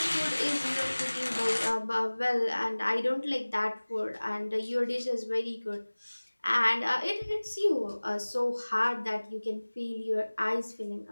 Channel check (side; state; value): both; inverted; correlation -1.00